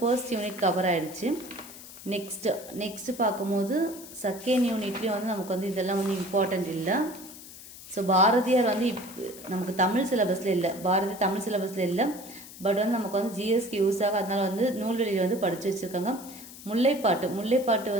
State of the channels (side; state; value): left; noise; hiss, 16 dB below the sound